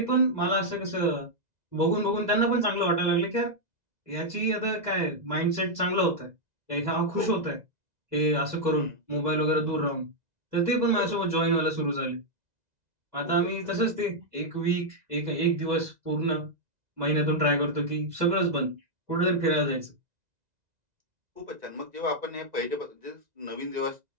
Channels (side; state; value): left; late; 2.0 ms